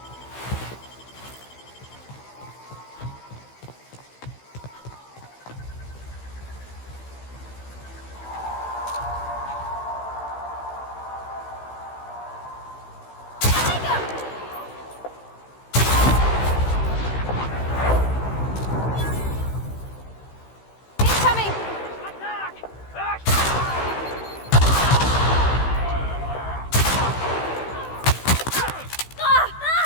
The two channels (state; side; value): late; right; 16 ms